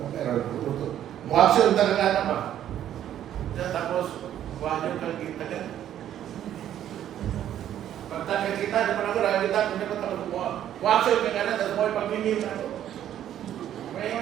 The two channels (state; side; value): quieter; left; 11.0 dB